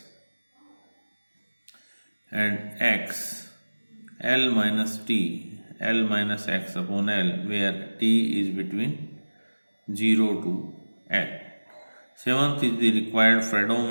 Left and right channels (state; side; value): inverted; both; correlation -1.00